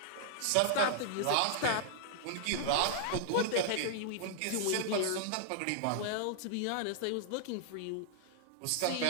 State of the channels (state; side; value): different; both; correlation -0.01